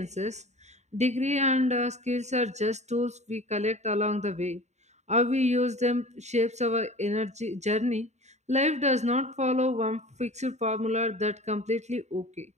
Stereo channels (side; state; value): left; late; 0.33 ms